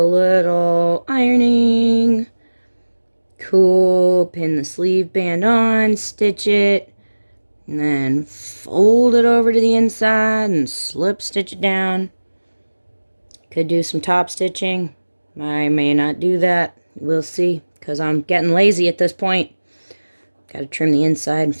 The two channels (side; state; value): both; inverted; correlation -1.00